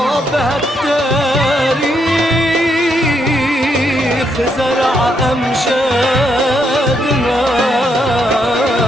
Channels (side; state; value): both; normal; correlation 0.77